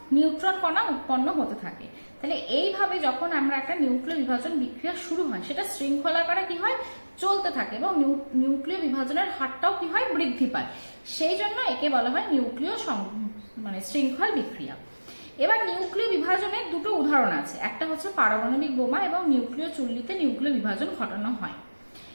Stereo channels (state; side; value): inverted; both; correlation -1.00